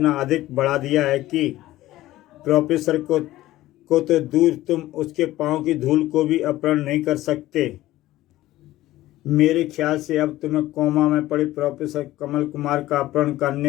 अधिक बढ़ा दिया है कि प्रोफेसर को तो दूर, तुम उसके पांव की धूल को भी अपहरण नहीं कर सकते। मेरे ख्याल से अब तुम्हें कोमा में पड़े प्रोफेसर कमल कुमार का अपहरण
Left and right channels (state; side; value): quieter; right; 15.9 dB